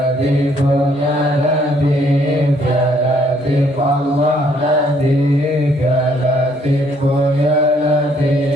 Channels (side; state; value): both; normal; correlation 0.66